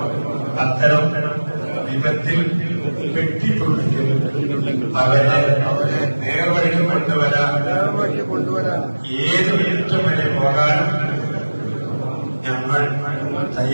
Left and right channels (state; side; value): inverted; both; correlation -1.00